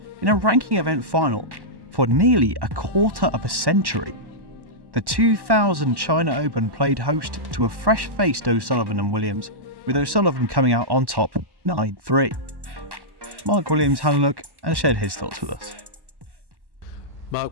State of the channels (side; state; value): left; late; 1.1 ms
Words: in a ranking event final for nearly a quarter of a century. The 2000 China Open played host to a fresh-faced O'Sullivan and Williams, with O'Sullivan coming out on top 9-3. Mark Williams had a look and shared his thoughts with us. Mark,